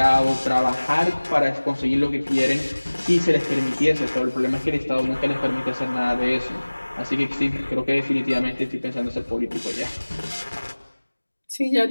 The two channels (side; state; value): both; inverted; correlation -1.00